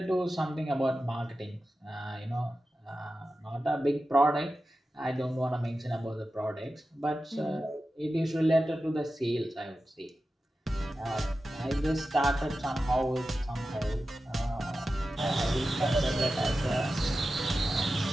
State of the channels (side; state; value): both; normal; correlation 0.93